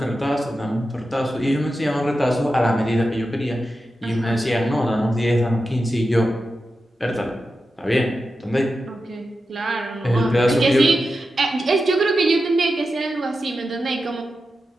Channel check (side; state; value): both; normal; correlation 0.90